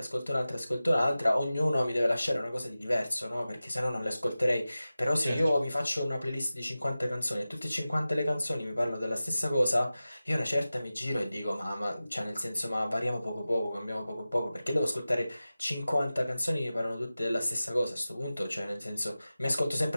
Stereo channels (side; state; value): both; inverted; correlation -0.95